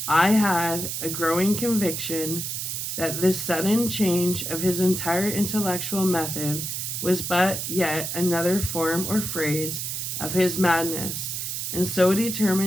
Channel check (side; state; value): right; noise; hiss, 3 dB below the sound